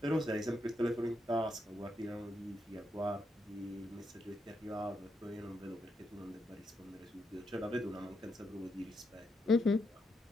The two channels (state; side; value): normal; both; correlation 0.81